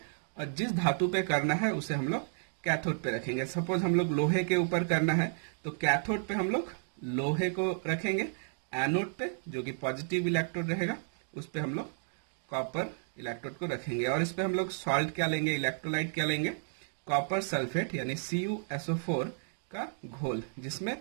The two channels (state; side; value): silent; left; digital silence